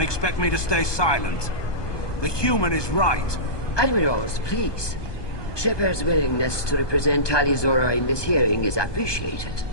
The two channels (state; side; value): late; right; 1.2 ms